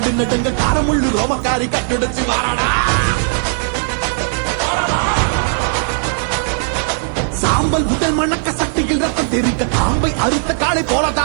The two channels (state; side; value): silent; left; digital silence